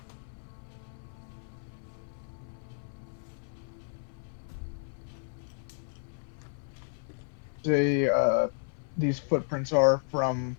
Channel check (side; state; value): right; silent; 56 dB below the other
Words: These footprints are from